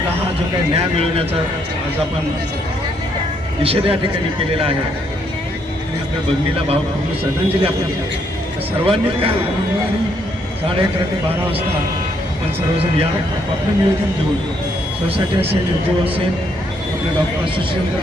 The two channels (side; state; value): both; normal; correlation 0.72